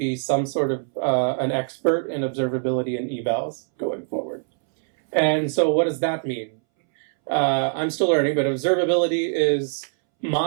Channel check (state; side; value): silent; left; 63 dB below the other